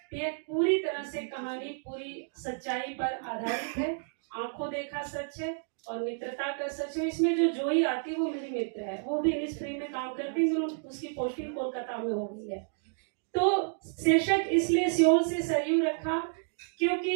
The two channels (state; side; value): silent; left; digital silence